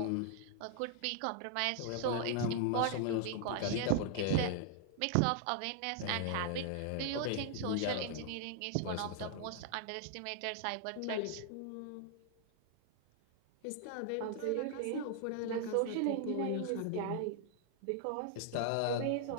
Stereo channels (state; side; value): different; both; correlation -0.01